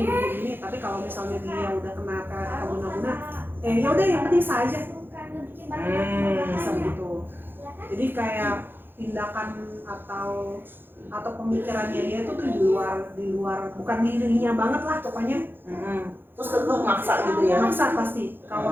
tapi kalau misalnya dia udah kena pelet atau guna-guna ya udah yang penting sah aja. Bisa begitu. Jadi kayak tindakan atau pemikirannya dia itu tuh di luar bukan dirinya banget lah pokoknya. Terus kedua maksa gitu ya? Maksa pasti.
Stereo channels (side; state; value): left; late; 0.10 ms